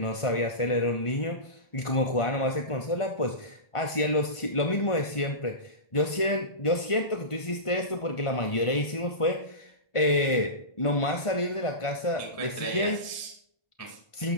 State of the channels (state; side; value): late; right; 1.5 ms